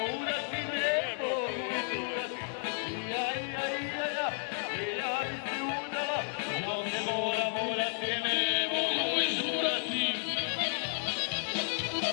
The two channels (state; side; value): silent; right; 56 dB below the other